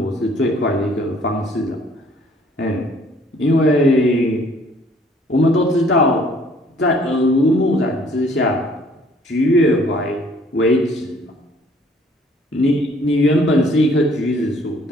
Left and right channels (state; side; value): normal; both; correlation 0.59